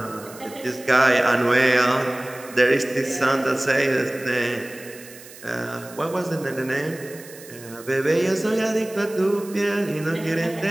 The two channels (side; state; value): right; noise; hiss, 18 dB below the sound